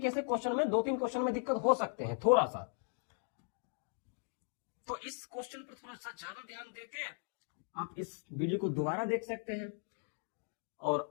से क्वेश्चन में 2-3 क्वेश्चन में दिक्कत हो सकते हैं थोड़ा सा। तो इस क्वेश्चन पर थोड़ा सा ज्यादा ध्यान देके आप इस वीडियो को दोबारा देख सकते हैं और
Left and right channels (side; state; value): right; silent; 53 dB below the other